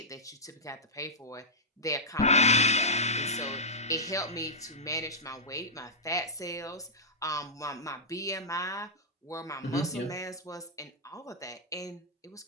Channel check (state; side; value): normal; both; correlation -0.10